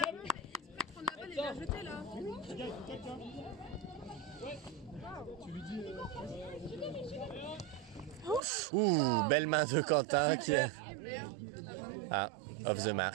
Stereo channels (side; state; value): left; drops out; at 8.4 s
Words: Ouh, belle main de Quentin qui est... Ah, off the